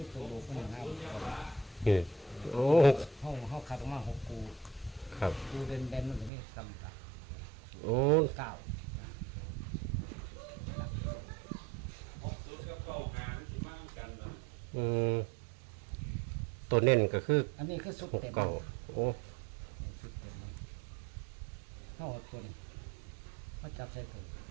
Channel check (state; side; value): drops out; left; at 6.3 s